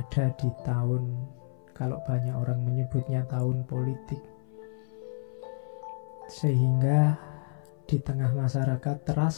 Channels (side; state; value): right; silent; 58 dB below the other